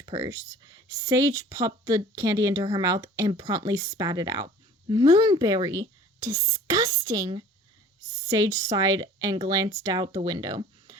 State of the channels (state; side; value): normal; both; correlation 0.47